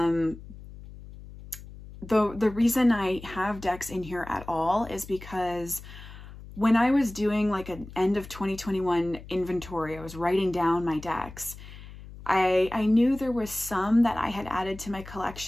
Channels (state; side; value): noise; left; hum, 16 dB below the sound